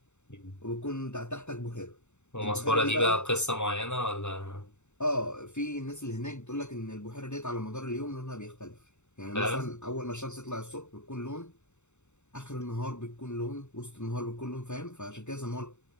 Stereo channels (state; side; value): late; right; 0.83 ms